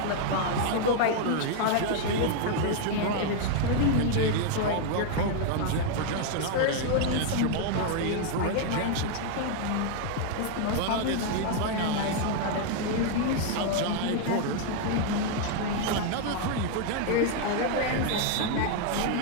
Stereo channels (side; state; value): both; different; correlation 0.00